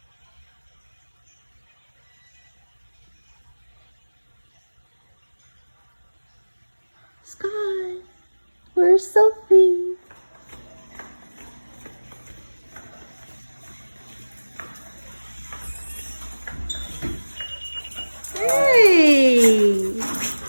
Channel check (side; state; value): both; inverted; correlation -1.00